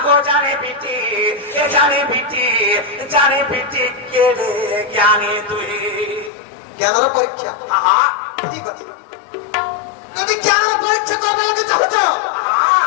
जाने बेटी केड़े ज्ञानी तुई ज्ञानर परीक्षा हां ठीक আছে যদি জ্ঞানের পরীক্ষা করবা লাগে চাচ্ছ हां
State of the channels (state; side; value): drops out; right; at 6.3 s